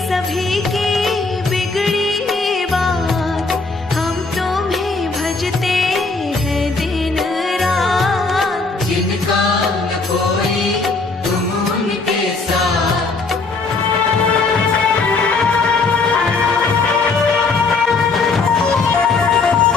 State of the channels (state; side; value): quieter; right; 4.0 dB